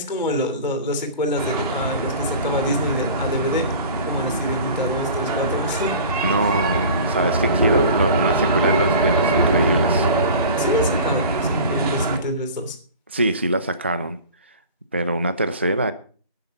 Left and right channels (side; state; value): both; inverted; correlation -0.40